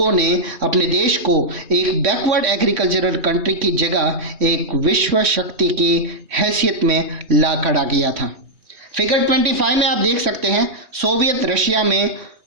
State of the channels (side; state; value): left; late; 3.2 ms